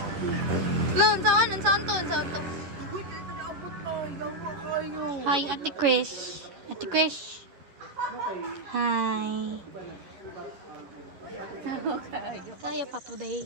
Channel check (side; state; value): left; late; 11 ms